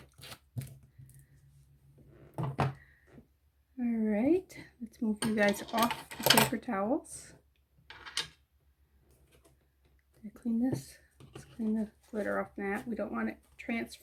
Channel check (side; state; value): both; identical; correlation 1.00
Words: All right, let's move you guys off the paper towels. Did I clean this? Let's clean the glitter off that. We don't want it to